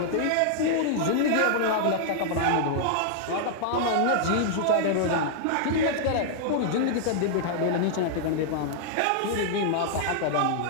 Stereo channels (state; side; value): different; both; correlation -0.01